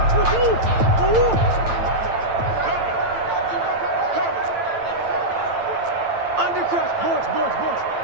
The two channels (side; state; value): left; late; 8.9 ms